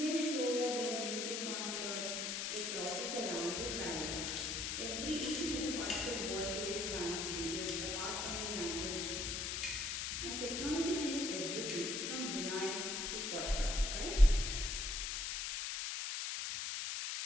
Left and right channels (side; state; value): left; noise; hiss, 1 dB below the sound